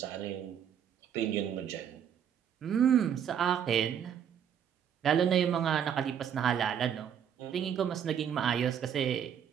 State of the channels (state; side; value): quieter; left; 8.7 dB